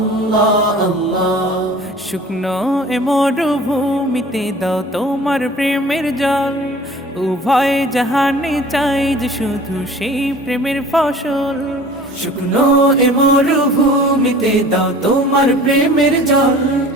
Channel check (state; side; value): normal; both; correlation 0.45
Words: আল্লাহ শুকনো এ মরুভূমিতে দাও তোমার প্রেমের জল উভয় জাহানে চাই যে শুধু সেই প্রেমের ফসল শুকনো এ মরুভূমিতে দাও তোমার প্রেমের জল